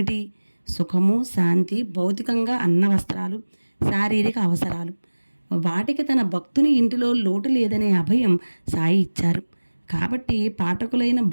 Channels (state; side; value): inverted; both; correlation -1.00